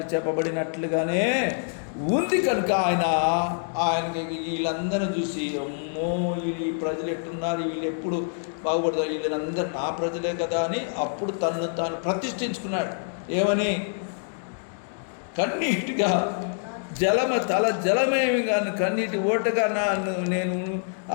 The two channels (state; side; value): silent; right; digital silence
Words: చెప్పబడినట్లుగానే ఉంది. కనుక ఆయనకి వీళ్ళందరూ చూసి, అమ్మో ఈ ప్రజలు ఎట్టున్నారు, వీళ్ళు ఎప్పుడు బాగుపడతారు, వీళ్ళందరూ నా ప్రజలే కదా అని అప్పుడు తను తాను ప్రతిష్ఠించుకున్నాడు. ఏమని? కన్నీటిగా జలమేమి కానీ కన్నీటి ఓటగా నేను